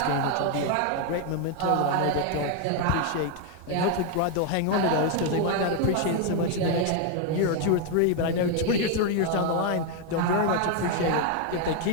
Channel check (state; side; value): different; both; correlation 0.01